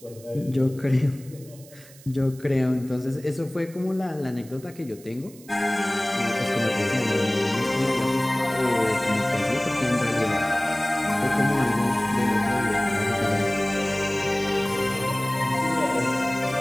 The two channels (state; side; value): noise; right; hiss, 22 dB below the sound